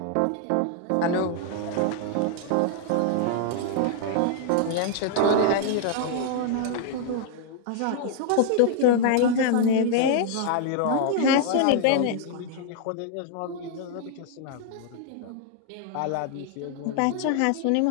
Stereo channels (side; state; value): both; different; correlation 0.00